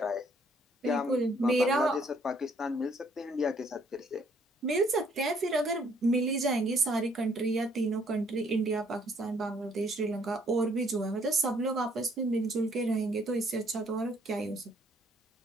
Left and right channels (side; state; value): both; normal; correlation 0.65